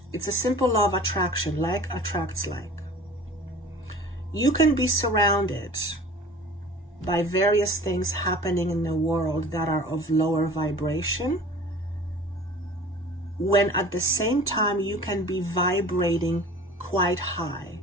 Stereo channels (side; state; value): both; normal; correlation 0.43